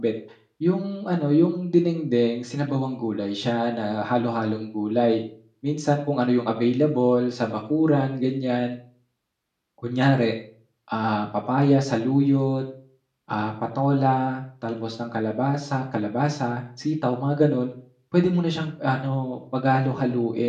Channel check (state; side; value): identical; both; correlation 1.00